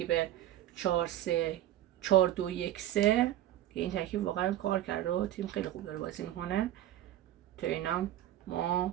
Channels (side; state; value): left; quieter; 13.0 dB